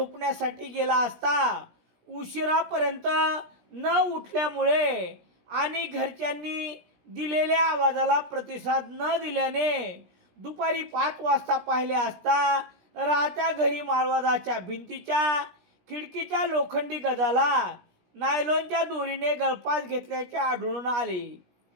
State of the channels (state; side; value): late; left; 17 ms